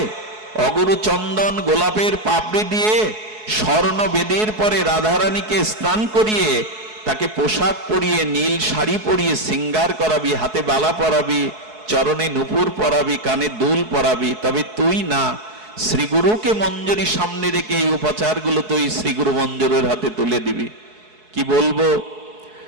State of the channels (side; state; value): left; late; 4.7 ms